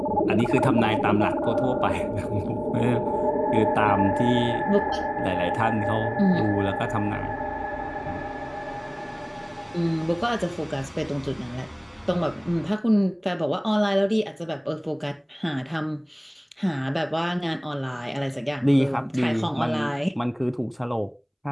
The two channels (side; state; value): both; identical; correlation 1.00